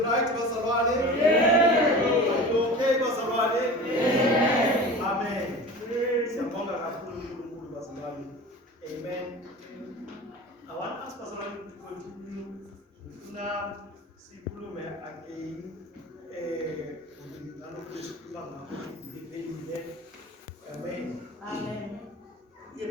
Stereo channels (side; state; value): both; normal; correlation 0.36